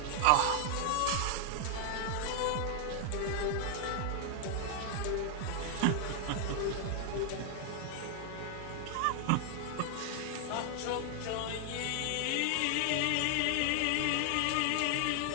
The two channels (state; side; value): different; both; correlation 0.00